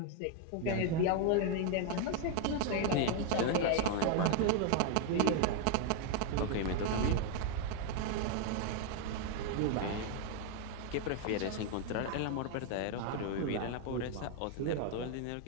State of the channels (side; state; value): both; different; correlation 0.00